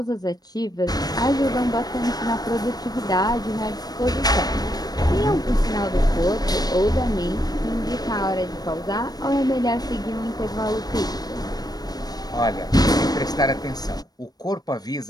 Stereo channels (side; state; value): right; late; 0.19 ms